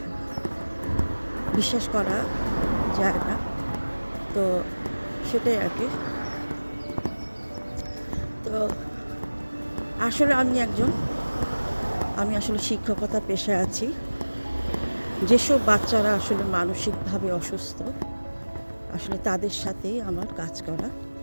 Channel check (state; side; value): inverted; both; correlation -1.00